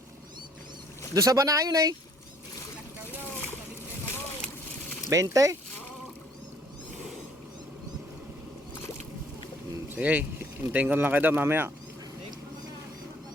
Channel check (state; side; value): normal; both; correlation 0.60